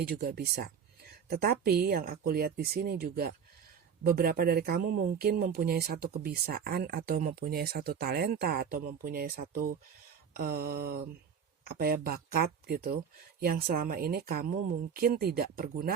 juga bisa. Tetapi yang aku lihat di sini juga beberapa dari kamu mungkin mempunyai satu kebiasaan atau mempunyai satu talenta atau mempunyai satu bakat gitu yang selama ini kamu mungkin tidak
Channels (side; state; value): left; quieter; 7.2 dB